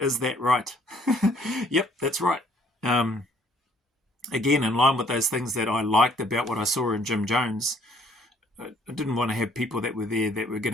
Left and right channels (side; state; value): both; normal; correlation 0.62